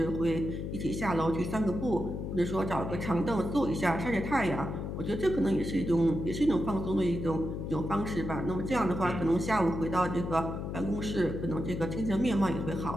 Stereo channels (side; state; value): left; noise; hum, 5 dB below the sound